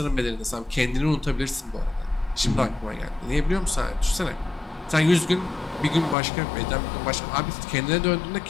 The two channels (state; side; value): drops out; right; at 6.2 s